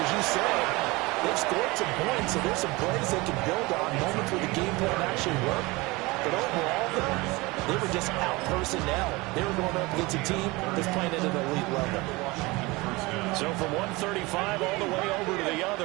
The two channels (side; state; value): left; quieter; 23.2 dB